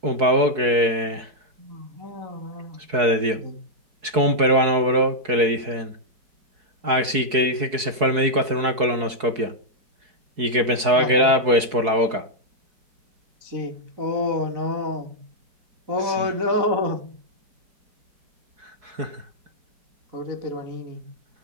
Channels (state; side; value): late; left; 4.7 ms